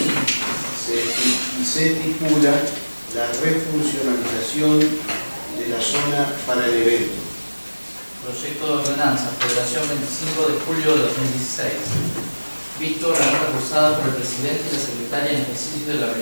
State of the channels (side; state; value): both; inverted; correlation -1.00